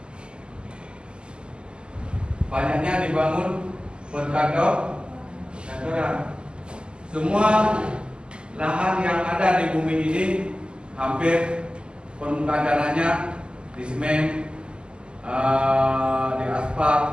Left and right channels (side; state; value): left; late; 0.049 ms